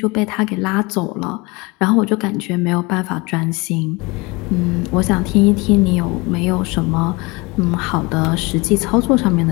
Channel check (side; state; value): right; quieter; 25.4 dB